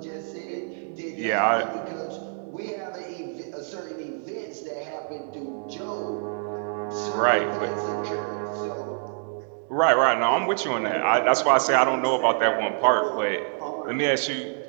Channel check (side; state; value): left; silent; 61 dB below the other